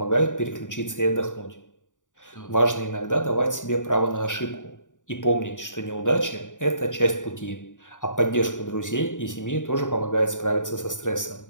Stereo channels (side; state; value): right; late; 0.87 ms